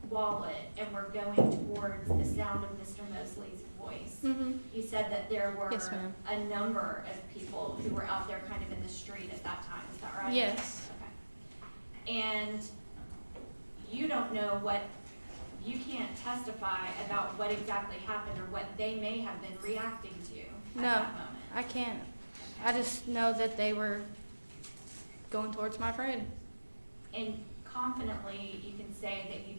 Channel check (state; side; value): inverted; both; correlation -1.00